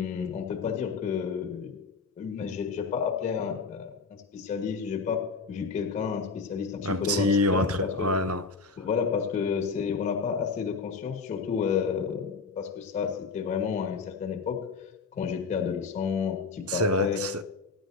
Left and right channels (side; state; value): right; quieter; 4.6 dB